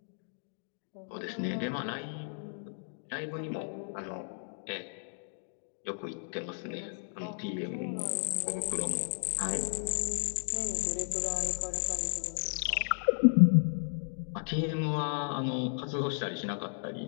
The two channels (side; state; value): right; silent; digital silence